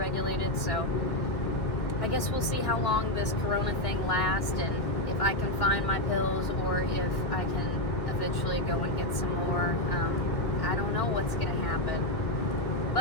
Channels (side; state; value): right; late; 1.6 ms